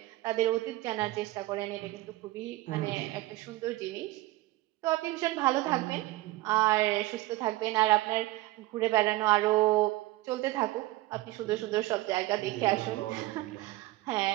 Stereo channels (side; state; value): left; quieter; 18.4 dB